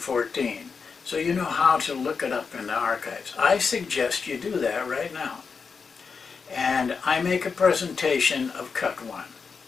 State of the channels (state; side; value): quieter; right; 5.4 dB